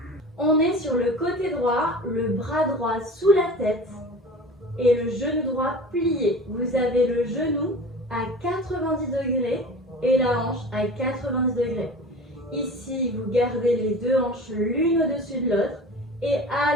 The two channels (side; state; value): both; normal; correlation 0.38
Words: On est sur le côté droit, le bras droit sous la tête et le genou droit plié. Vous avez le genou à 90 degrés et la hanche à 90 degrés. Ici, vous gardez les 2 hanches l'une au-dessus de l'autre et